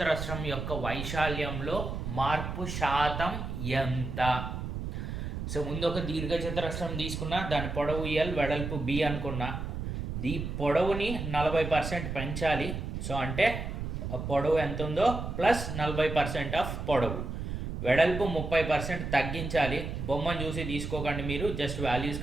యొక్క వైశాల్యంలో మార్పు శాతం ఎంత? సో ముందు ఒక దీర్ఘ చతురస్రం తీసుకున్నా, దాని పొడవు ఎల్ వెడల్పు బి అనుకున్నా. ఈ పొడవుని 40% పెంచాలి. సో అంటే పొడవు ఎంత ఉందో ప్లస్ 40% ఆఫ్ పొడవు, వెడల్పు 30% తగ్గించాలి. బొమ్మను చూసి తీసుకోకండి, మీరు జస్ట్ వాల్యూస్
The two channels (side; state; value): right; noise; rumble, 5 dB below the sound